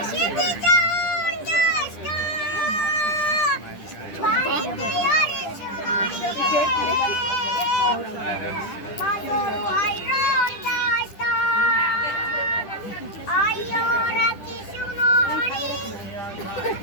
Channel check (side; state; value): right; late; 10 ms